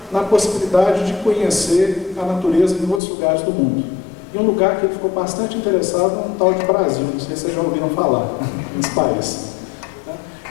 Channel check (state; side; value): drops out; right; at 3.0 s